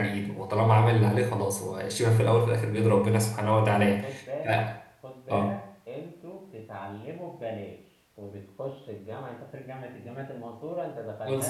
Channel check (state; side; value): identical; both; correlation 1.00